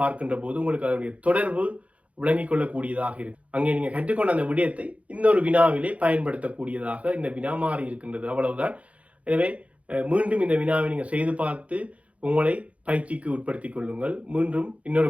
பார்க்கின்ற போது உங்களுக்கு அதனுடைய தொடர்பு விளங்கிக் கொள்ளக்கூடியதாக இருக்கு. அங்கே நீங்க கற்றுக்கொண்ட அந்த விடயத்தை இன்னொரு வினாவிலே பயன்படுத்தக்கூடியதாக இந்த வினா மாறி இருக்கின்றது. அவ்வளவுதான். எனவே மீண்டும் இந்த வினாவை நீங்க செய்து பார்த்து உங்களை பயிற்சிக்கு உட்படுத்திக் கொள்ளுங்கள். மீண்டும் இன்னொரு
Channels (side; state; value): left; late; 0.065 ms